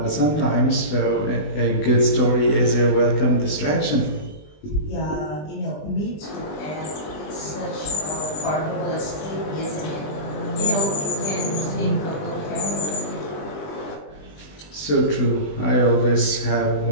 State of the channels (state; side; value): late; right; 20 ms